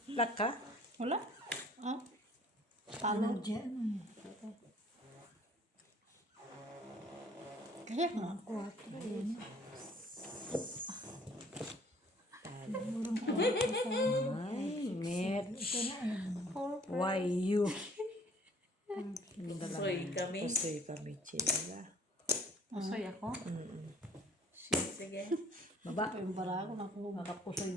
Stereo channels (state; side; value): normal; both; correlation 0.56